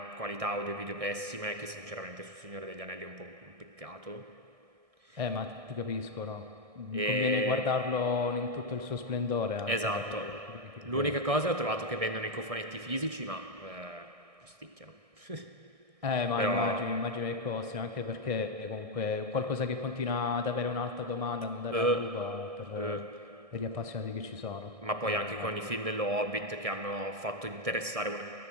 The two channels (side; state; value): left; late; 1.6 ms